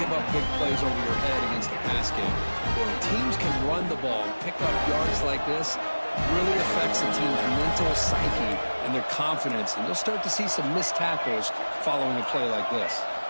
up big plays over your head against the pass game. When teams can run the ball and pick up yards like this, really affects the team's mental psyche and their confidence, and you'll start to see some missed tackles following a play like this.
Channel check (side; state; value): both; inverted; correlation -1.00